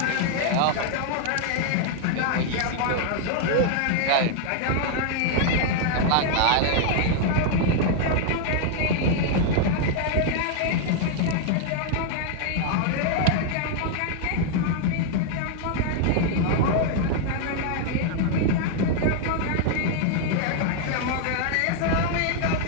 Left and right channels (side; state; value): both; different; correlation 0.00